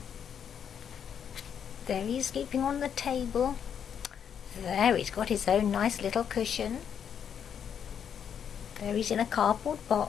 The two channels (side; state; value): right; quieter; 8.1 dB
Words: There he's sleeping on the table. There he's got his own nice little cushion. There he's in a cardboard